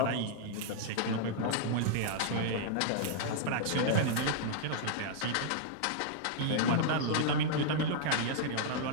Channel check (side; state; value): both; different; correlation -0.01